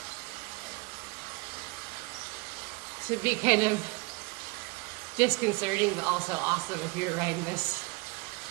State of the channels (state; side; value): quieter; left; 27.3 dB